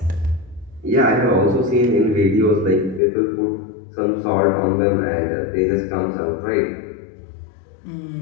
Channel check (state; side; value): drops out; right; at 3.0 s